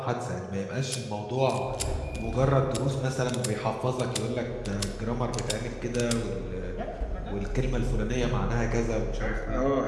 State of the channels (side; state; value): both; identical; correlation 1.00